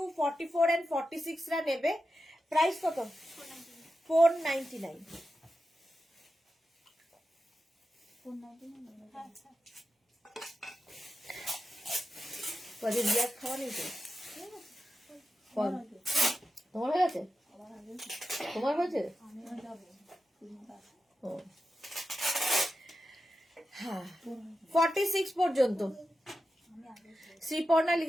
44 and 46 রা নেবে। প্রাইস কত? 499। কদিন বিয়ার খাওয়া নেই তো? তোমার হয়ে গেছে? তোমার হয়েছে? ও হ্যাঁ, 46 পর্যন্ত। শ্রীপর্ণা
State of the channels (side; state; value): both; normal; correlation 0.91